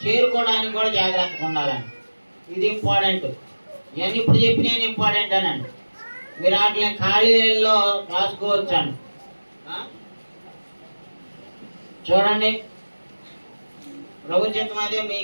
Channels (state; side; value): inverted; both; correlation -1.00